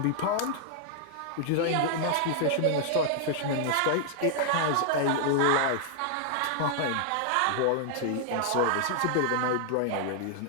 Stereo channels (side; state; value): both; different; correlation -0.01